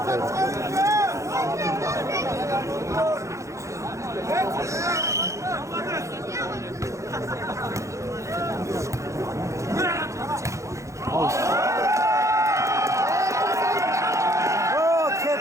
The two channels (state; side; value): late; left; 0.15 ms